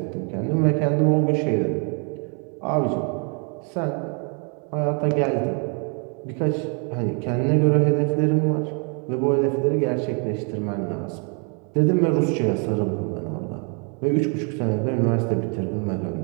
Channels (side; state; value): left; quieter; 37.1 dB